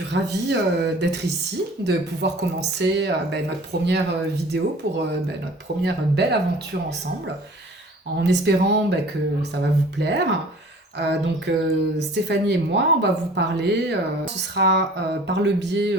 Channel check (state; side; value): normal; both; correlation 0.47